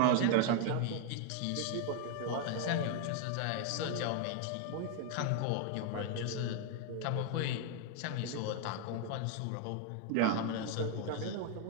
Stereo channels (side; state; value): both; different; correlation 0.01